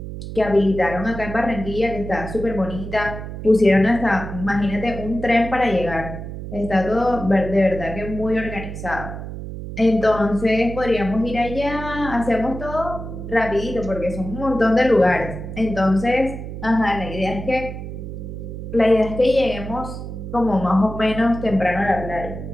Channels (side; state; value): right; noise; hum, 9 dB below the sound